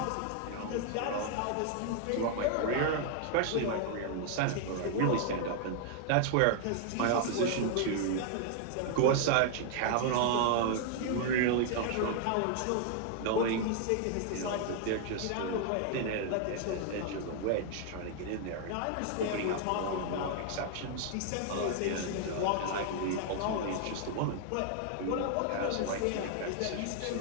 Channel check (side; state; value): both; different; correlation 0.00